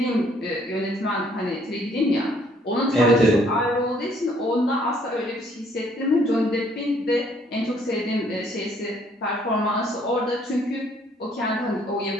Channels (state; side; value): normal; both; correlation 0.64